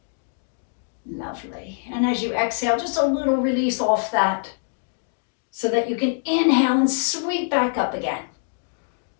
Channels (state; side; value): silent; right; digital silence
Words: Lovely. And as you exhale, just a little release off that so that you can inhale and sweep back up again.